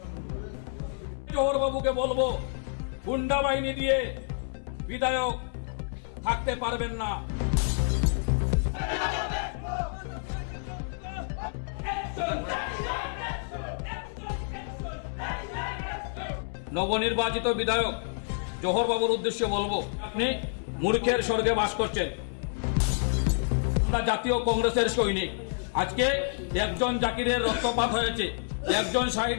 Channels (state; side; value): silent; right; 59 dB below the other